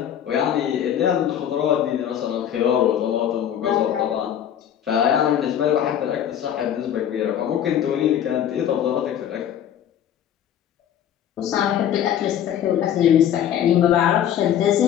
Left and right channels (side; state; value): right; quieter; 10.0 dB